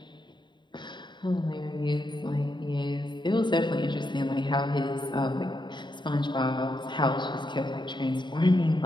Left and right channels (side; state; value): right; late; 0.22 ms